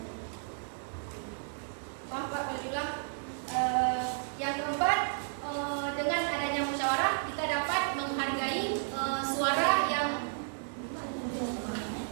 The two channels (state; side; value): silent; left; digital silence